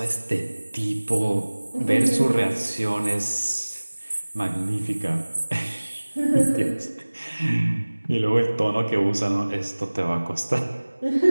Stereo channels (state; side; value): inverted; both; correlation -1.00